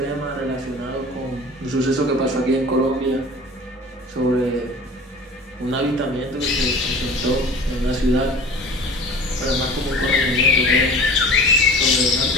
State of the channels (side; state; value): both; normal; correlation 0.41